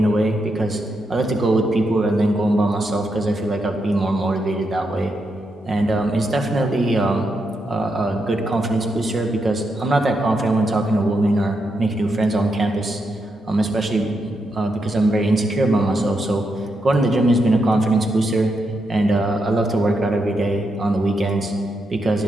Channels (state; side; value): normal; both; correlation 0.82